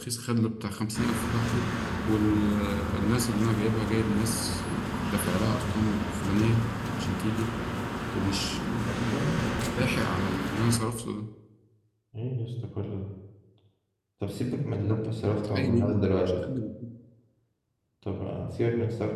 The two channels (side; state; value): both; identical; correlation 1.00